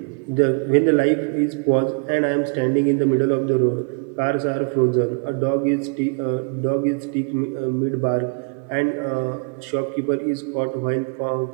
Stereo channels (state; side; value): quieter; left; 38.1 dB